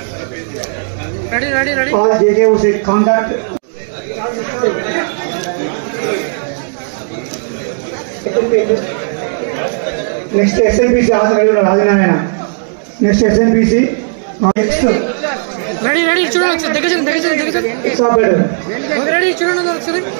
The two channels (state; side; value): silent; left; 71 dB below the other